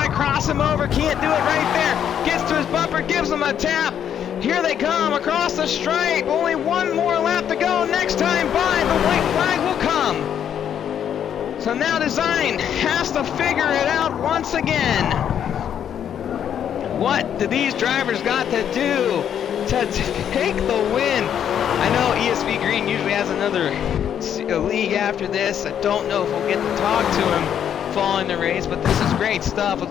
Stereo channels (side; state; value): right; quieter; 9.2 dB